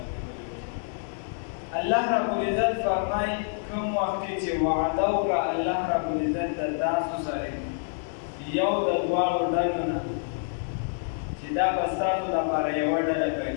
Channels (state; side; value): silent; right; digital silence